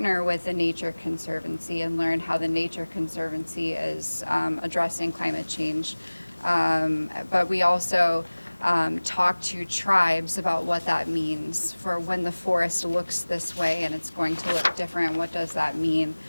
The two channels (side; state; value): both; inverted; correlation -1.00